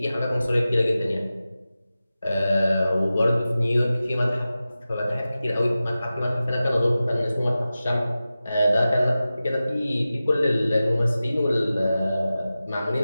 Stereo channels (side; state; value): both; inverted; correlation -0.95